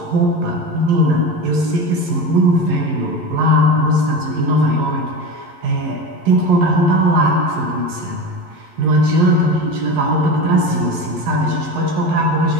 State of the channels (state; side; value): late; left; 11 ms